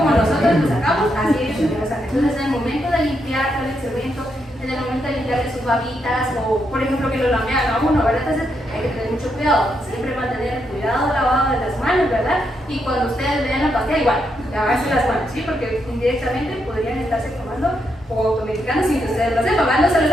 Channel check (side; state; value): both; normal; correlation 0.80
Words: nosotros lo sacamos, así ellos también lo sacan. Entonces en el momento de limpiar el excremento, en el momento de limpiarle sus babitas o por ejemplo que lo lamean a uno, ¿verdad? Entonces hay que tener mucho cuidado, siempre mantener el cuidado lavado de las manos, ¿verdad? Y cuando ustedes vean la pastilla, igual, lavarse las manos, ¿sí? Porque indirectamente podrían estarse tomando o automedicando sin que ustedes lo sepan, ¿verdad? No se lo